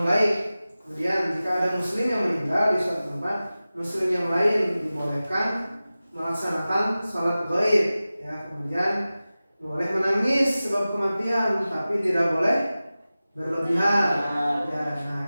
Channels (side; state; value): both; inverted; correlation -0.96